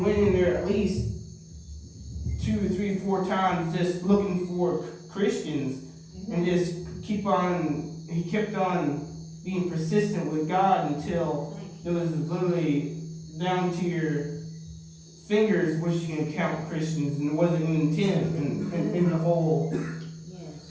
went in there at least 2, 3, 4 times just looking for Christians and just he kept on being persistent with God until it was literally down to your fingers which you can count Christians, and it wasn't even 10 in the whole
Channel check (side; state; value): both; identical; correlation 1.00